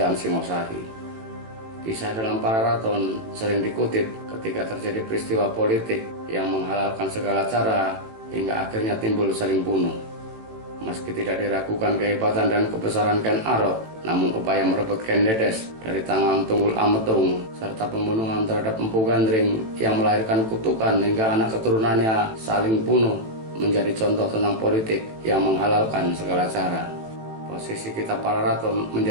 Singosari. Kisah dalam Pararaton sering dikutip ketika terjadi peristiwa politik yang menghalalkan segala cara hingga akhirnya timbul saling bunuh. Meski tidak diragukan kehebatan dan kebesaran Ken Arok, namun upaya merebut Ken Dedes dari tangan Tunggul Ametung serta pembunuhan terhadap Empu Gandring yang melahirkan kutukan hingga anak keturunannya saling bunuh menjadi contoh tentang politik yang menghalalkan segala cara. Posisi Kitab Pararaton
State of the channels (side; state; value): left; late; 18 ms